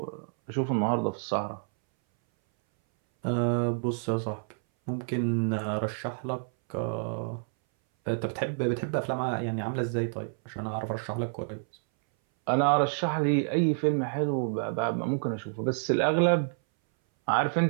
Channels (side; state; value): left; silent; 59 dB below the other